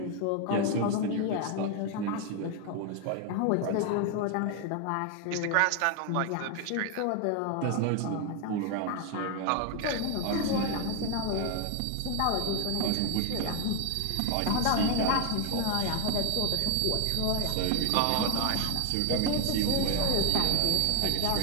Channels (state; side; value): different; both; correlation 0.01